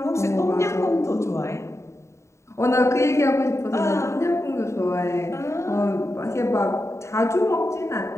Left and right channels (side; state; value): right; late; 0.14 ms